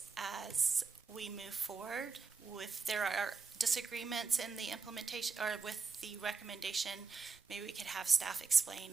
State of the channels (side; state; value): left; quieter; 4.8 dB